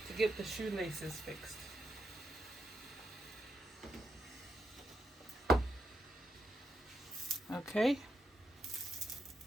get the shoelaces fixed. Okay.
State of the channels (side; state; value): both; normal; correlation 0.82